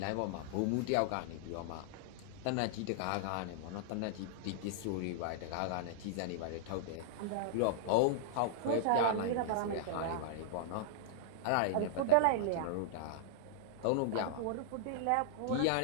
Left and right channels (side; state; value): both; different; correlation -0.01